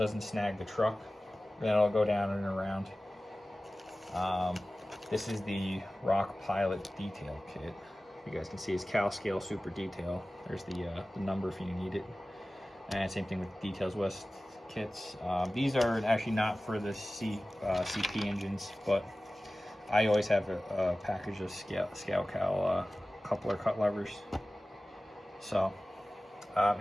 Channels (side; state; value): both; normal; correlation 0.97